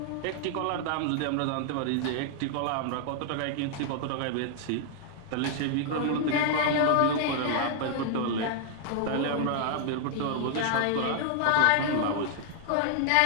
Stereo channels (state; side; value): different; both; correlation 0.00